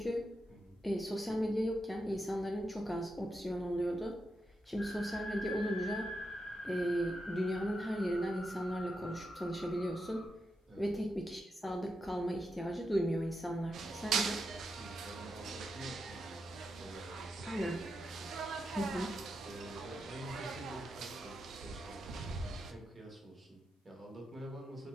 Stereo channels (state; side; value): normal; both; correlation 0.86